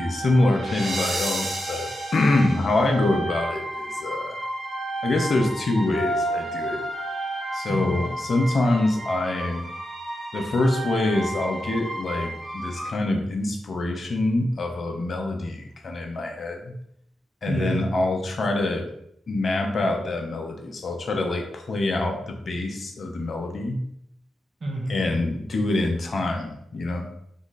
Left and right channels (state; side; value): normal; both; correlation 0.88